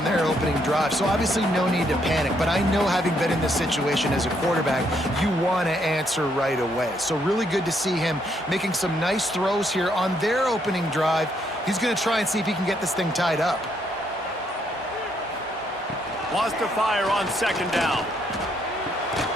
their opening drive, so obviously no need to panic. But I know, having been in this situation as a quarterback, you want to answer right away. So really good to see him making some nice throws here on their opening drive. He's going to try and see if he can get this thing tied up. Wants to fire on second down.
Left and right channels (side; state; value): both; normal; correlation 0.73